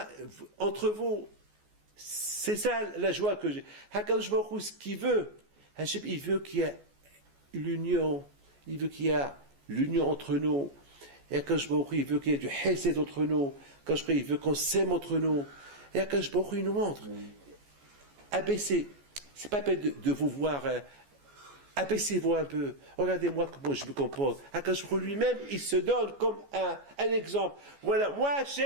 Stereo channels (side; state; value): left; late; 14 ms